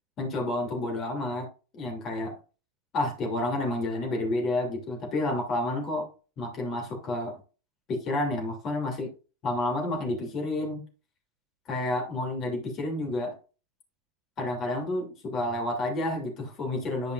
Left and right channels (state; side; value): normal; both; correlation 0.50